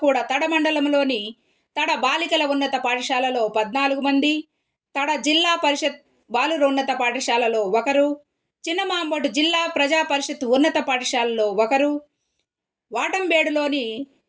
కూడా తడ మండలంలోని తడ బాలికల ఉన్నత పాఠశాలలో 14 మంది, తడ జిల్లా పరిషత్ బాలుర ఉన్నత పాఠశాలలో 1, చిన్నమాంబోటు జిల్లా ప్రజా పరిషత్ ఉన్నత పాఠశాలలో 1, వాటంబేడులోని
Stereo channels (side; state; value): both; identical; correlation 1.00